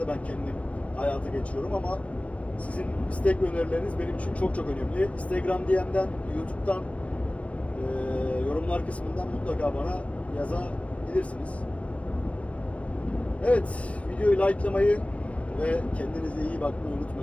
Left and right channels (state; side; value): late; right; 0.064 ms